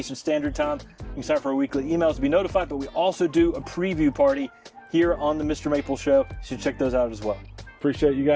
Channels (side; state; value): both; identical; correlation 1.00